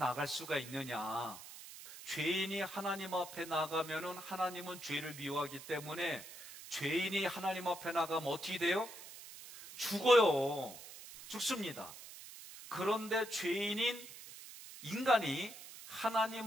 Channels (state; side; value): noise; right; hiss, 14 dB below the sound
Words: 수가 있느냐? 죄인이 하나님 앞에 나가면은 하나님은 죄를 미워하기 때문에 죄인이 하나님 앞에 나가면 어떻게 돼요? 죽어요. 죽습니다. 그런데 죄인인 인간이